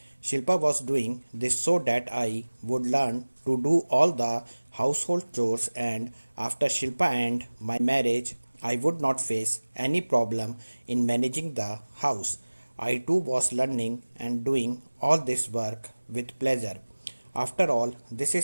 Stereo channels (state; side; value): inverted; both; correlation -1.00